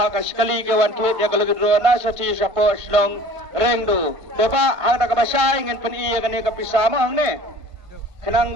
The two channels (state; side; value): late; left; 1.6 ms